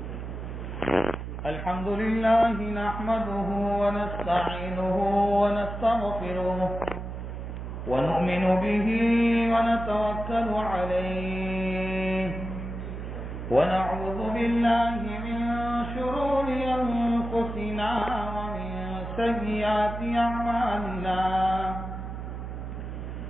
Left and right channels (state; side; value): noise; right; hum, 7 dB below the sound